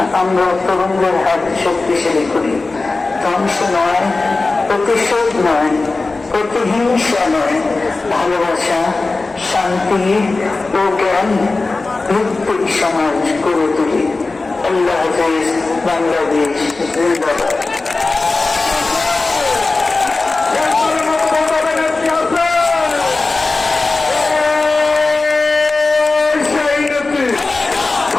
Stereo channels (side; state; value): right; quieter; 3.5 dB